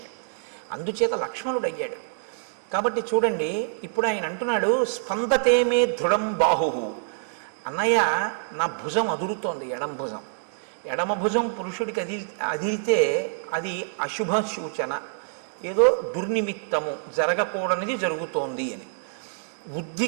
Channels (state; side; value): silent; left; digital silence